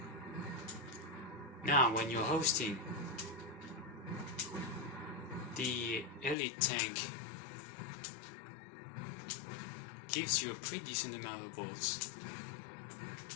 Now, when you're hosting, the elite tank gives you a pretty decent amount of bolts.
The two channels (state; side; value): drops out; right; at 6.4 s